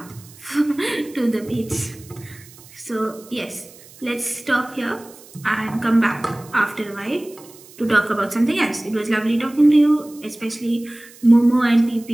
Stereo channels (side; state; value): right; noise; hiss, 22 dB below the sound